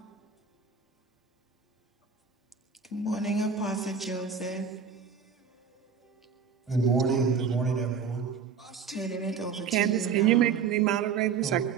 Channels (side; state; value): left; quieter; 6.3 dB